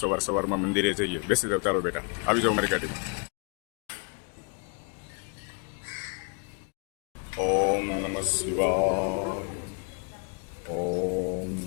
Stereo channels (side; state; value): right; quieter; 35.9 dB